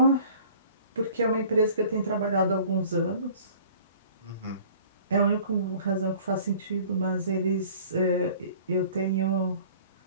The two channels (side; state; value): both; inverted; correlation -0.49